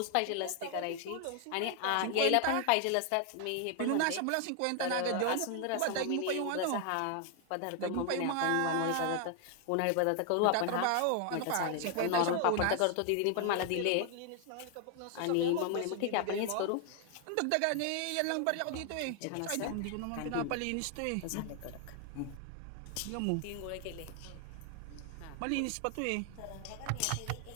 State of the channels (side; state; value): both; different; correlation 0.00